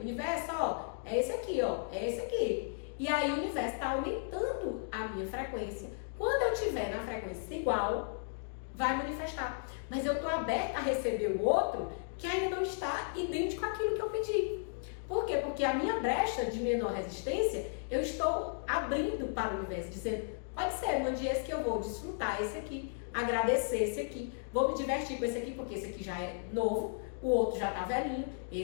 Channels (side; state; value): right; silent; digital silence